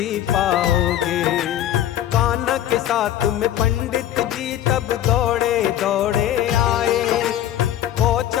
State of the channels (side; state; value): right; quieter; 11.8 dB